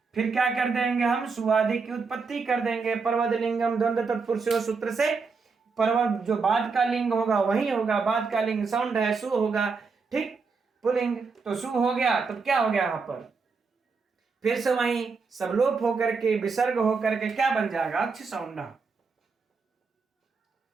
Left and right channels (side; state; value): left; quieter; 4.8 dB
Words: फिर क्या कर देंगे हम, सुआदि की उत्पत्ति कर देंगे, पर्वत लिंगम द्वंद्व तत्पुरुषो सूत्र से पर्वत जो बाद का लिंग होगा वही होगा, बाद का लिंग सौंड है, सु होगा, ठीक, पुलिंग, तो सु हो गया, तो क्या हो गया यहाँ पर फिर से वही सब लोप होकर के विसर्ग होकर के क्या बन जाएगा, अक्ष सौंड